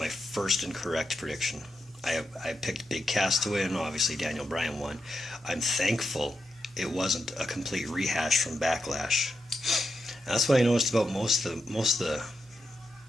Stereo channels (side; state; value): both; normal; correlation 0.86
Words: first incorrect prediction. I picked Big Cass to win. Obviously Daniel Bryan won. I'm thankful it wasn't a complete rehash from Backlash. And that's what I noticed about most of the